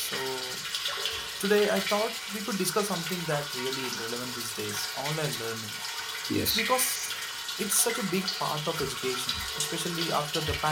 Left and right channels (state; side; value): identical; both; correlation 1.00